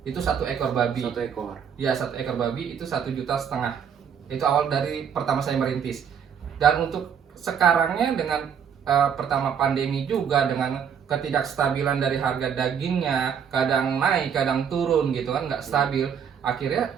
Itu 1 ekor babi. 1 ekor. Ya, 1 ekor babi itu 1,5 juta. Itu awal dari pertama saya merintis. Dan untuk sekarangnya dengan pertama pandemi juga, dengan ketidakstabilan dari harga dagingnya, kadang naik kadang turun gitu kan, nggak stabil. Akhirnya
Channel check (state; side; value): quieter; left; 7.6 dB